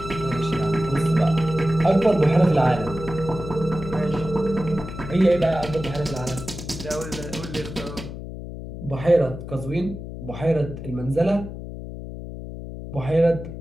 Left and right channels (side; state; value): left; noise; hum, 10 dB below the sound